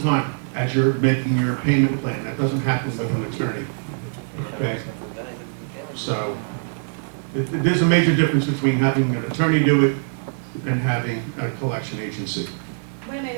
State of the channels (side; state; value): left; silent; digital silence